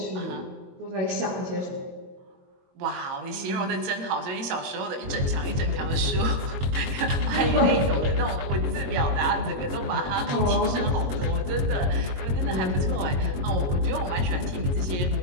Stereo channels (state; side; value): late; left; 22 ms